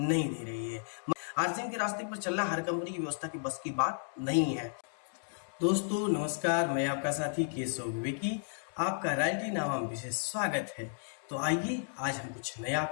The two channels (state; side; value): silent; right; digital silence